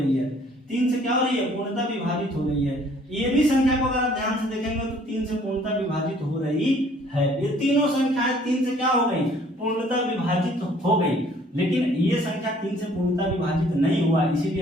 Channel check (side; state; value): both; normal; correlation 0.58